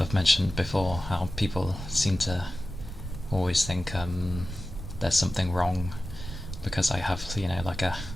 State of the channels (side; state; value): right; noise; rumble, 9 dB below the sound